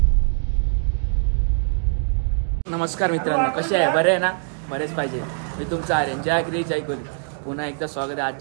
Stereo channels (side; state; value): left; silent; digital silence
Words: नमस्कार मित्रांनो, कसे आहे? बरे आहे ना? बरेच पाहिजे. मी तुमचा आर्यन, जय क्री जय कोली. पुन्हा एकदा स्वागत आहे